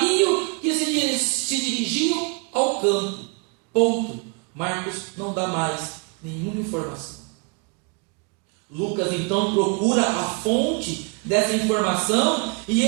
que se dirigiam ao campo. Ponto. Marcos não dá mais nenhuma informação. Lucas então procura a fonte dessa informação e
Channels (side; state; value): left; quieter; 33.5 dB